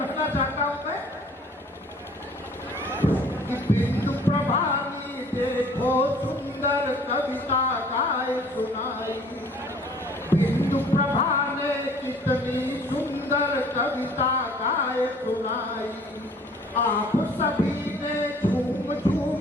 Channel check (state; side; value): normal; both; correlation 0.53